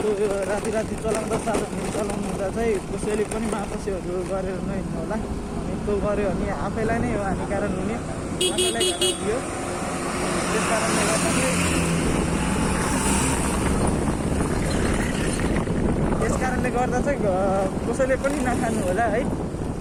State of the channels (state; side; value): identical; both; correlation 1.00